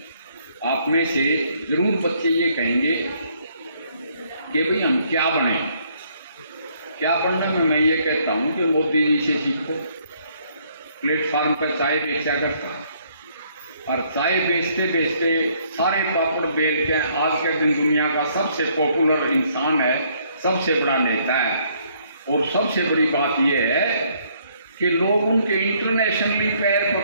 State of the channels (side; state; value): both; inverted; correlation -0.67